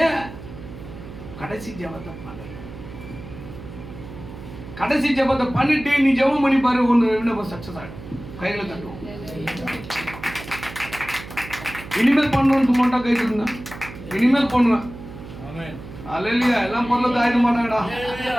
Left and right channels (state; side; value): noise; right; hum, 13 dB below the sound